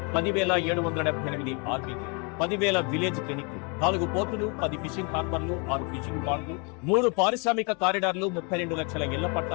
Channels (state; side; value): quieter; right; 33.9 dB